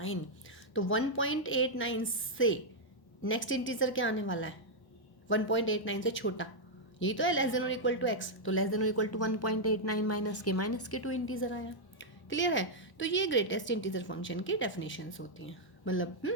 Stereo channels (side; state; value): right; late; 1.1 ms